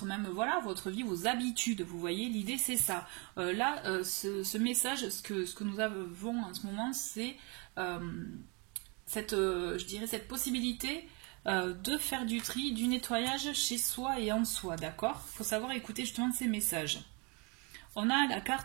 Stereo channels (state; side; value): quieter; left; 31.7 dB